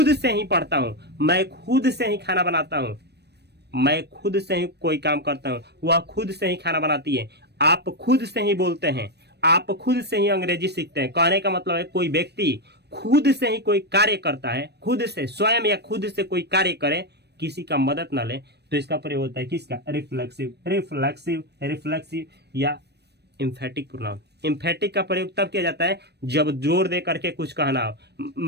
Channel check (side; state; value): left; late; 0.48 ms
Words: से ही पढ़ता हूं, मैं खुद से ही खाना बनाता हूं, मैं खुद से ही कोई काम करता हूं, वह खुद से ही खाना बनाती है, आप खुद से ही बोलते हैं, आप खुद से ही अंग्रेजी सीखते हैं। कहने का मतलब है कोई व्यक्ति खुद से ही कोई कार्य करता है, खुद से स्वयं या खुद से कोई कार्य करे, किसी का मदद ना ले, तो इसका प्रयोग होता है किसका? रिफ्लेक्सिव, रिफ्लेक्सिव, रिफ्लेक्सिव या इम्फेटिक प्रोनाउन। इम्फेटिक का प्रयोग तब किया जाता है जब जोर दे करके कुछ कहना हो।